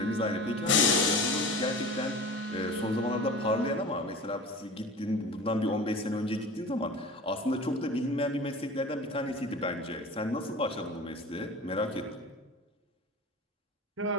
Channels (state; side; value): normal; both; correlation 0.36